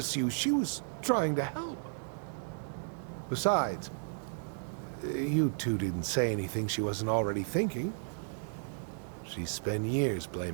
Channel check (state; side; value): silent; left; digital silence